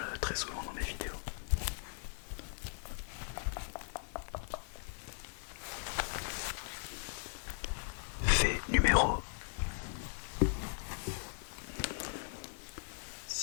très souvent dans mes vidéos. Fait numéro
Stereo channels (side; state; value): right; silent; digital silence